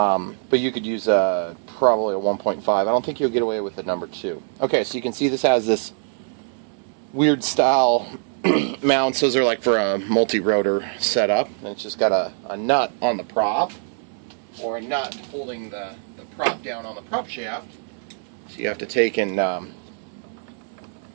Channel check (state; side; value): silent; left; 63 dB below the other